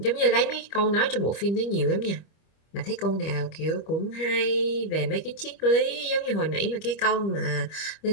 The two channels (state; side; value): late; right; 25 ms